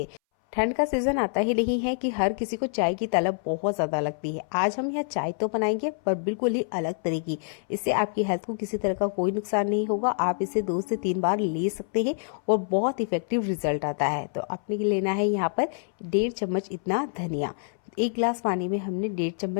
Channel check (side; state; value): right; silent; 60 dB below the other